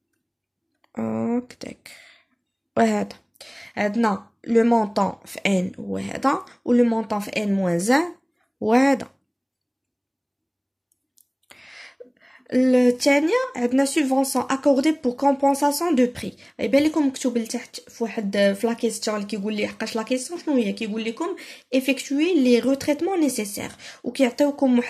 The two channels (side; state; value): both; identical; correlation 1.00